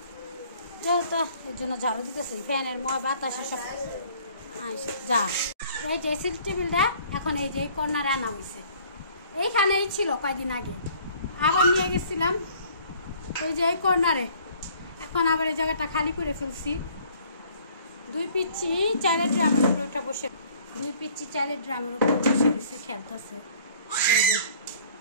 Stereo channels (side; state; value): both; inverted; correlation -0.55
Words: যেহেতু এর জন্য ঝাড়ু দিতেছি, ফ্যানের বাতাসে সব যা। এই ড্রেসিং টেবিলটা এখন এই যে কর্নারে আনা হয়েছে, এইখানেই ছিল কয়দিন আগে, আবার নিয়ে গেছিলাম ওই যে এই কর্নারে। এখন আবার এই জায়গাটা খালি করে ফেলছি। 2 পিচ্চি চালের ড্রামের উপরে ওটা বসে, 2 পিচ্চি চালের ড্রামের উপরে বসে রয়েছে, খেলতেছে।